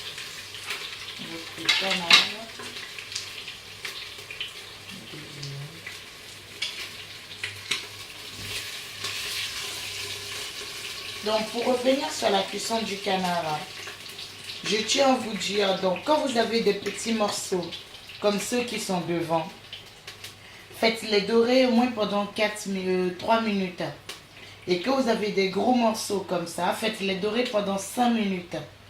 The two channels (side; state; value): both; identical; correlation 1.00